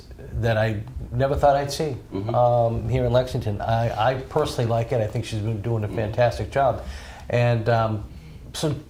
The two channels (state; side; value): identical; both; correlation 1.00